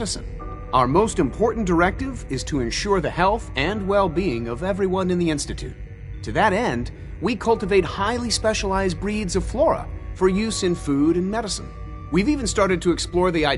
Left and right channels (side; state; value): both; identical; correlation 1.00